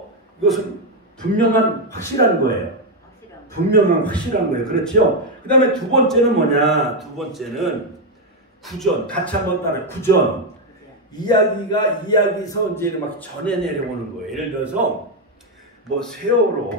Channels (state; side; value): normal; both; correlation 0.04